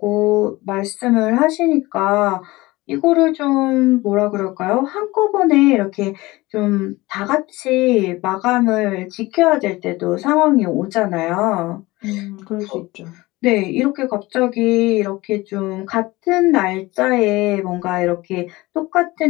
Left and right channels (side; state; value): right; quieter; 20.4 dB